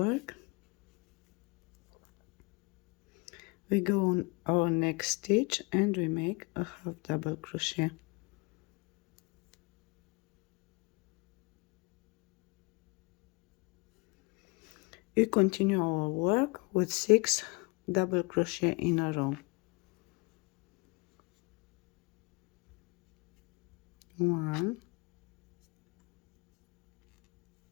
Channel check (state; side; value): quieter; right; 28.3 dB